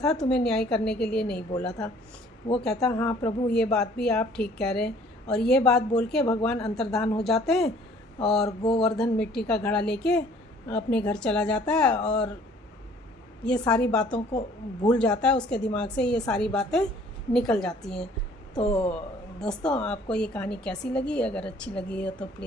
तुम्हें न्याय करने के लिए नहीं बोला था। वो कहता, हाँ प्रभु, ये बात भी आप ठीक कह रहे हैं। और ये बात बोल के भगवान अंतर्धान हो जाते हैं और गोवर्धन मिट्टी का घड़ा लेके अपने घर चला जाता है और ये सारी बातों को भूल जाता है। उसके दिमाग से ये सारी बातें निकल जाती हैं। तो दोस्तों, आपको ये कहानी कैसी लगी? अगर अच्छी लगी हो तो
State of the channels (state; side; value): normal; both; correlation 0.56